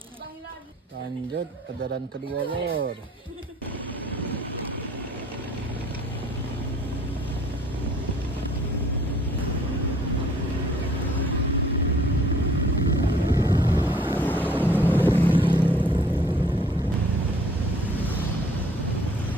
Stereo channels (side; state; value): both; normal; correlation 0.56